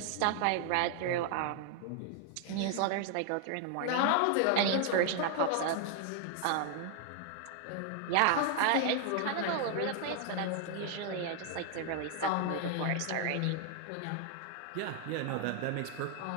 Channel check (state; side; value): different; both; correlation 0.00